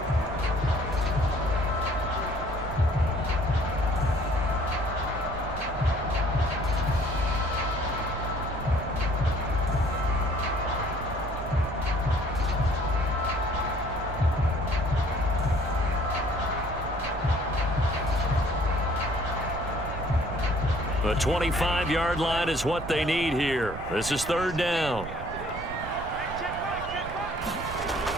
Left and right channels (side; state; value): right; noise; rumble, 10 dB below the sound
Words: The 25-yard line is what they need here. This is third down.